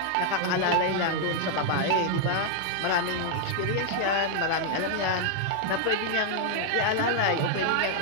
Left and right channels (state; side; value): different; both; correlation 0.00